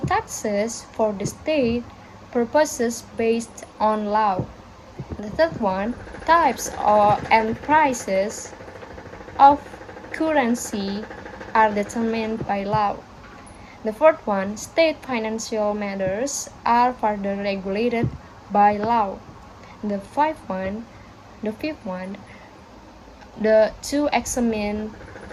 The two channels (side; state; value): both; identical; correlation 1.00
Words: for the state purposes based on law. The third one, types and prices of currency are determined by law. The fourth one, state financial matters are further regulated by law. The fifth one, to examine